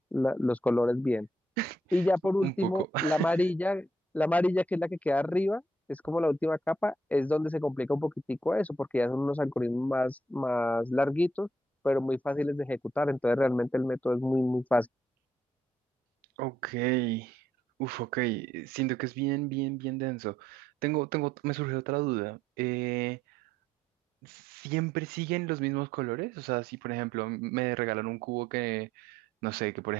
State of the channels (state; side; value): normal; both; correlation 0.72